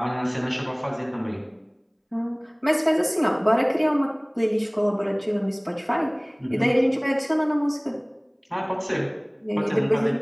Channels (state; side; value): identical; both; correlation 1.00